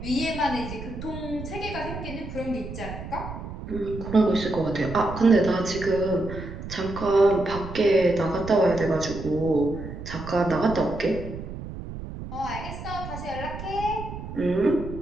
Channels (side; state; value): right; noise; rumble, 10 dB below the sound